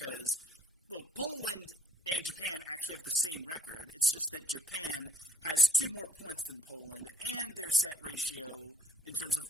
well, Poland and Japan actually have the same record. It's just that Japan has 2 more points than Poland, and their set ratio in terms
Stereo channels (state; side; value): normal; both; correlation 0.60